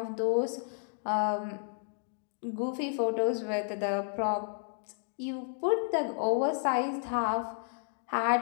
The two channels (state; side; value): silent; right; digital silence